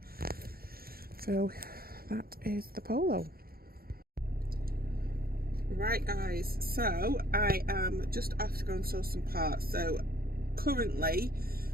So that is the Polo. Right guys, so I am just off to go and source some parts. So currently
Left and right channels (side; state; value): left; late; 0.44 ms